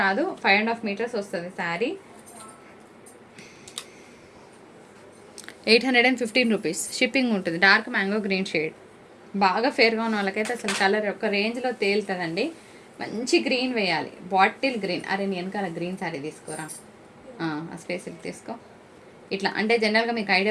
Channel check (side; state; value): both; identical; correlation 1.00